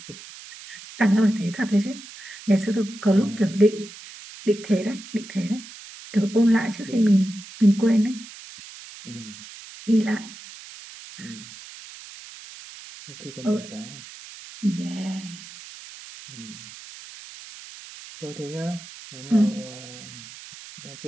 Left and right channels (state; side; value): noise; right; hiss, 16 dB below the sound